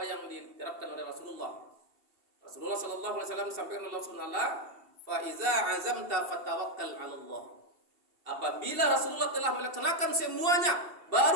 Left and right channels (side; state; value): left; late; 2.7 ms